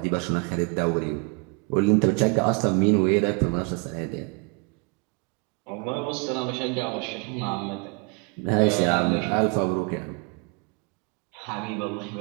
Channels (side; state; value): left; quieter; 32.5 dB